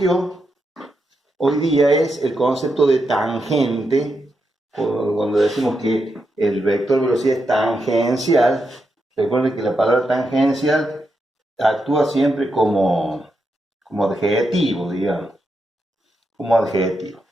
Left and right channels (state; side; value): normal; both; correlation 0.85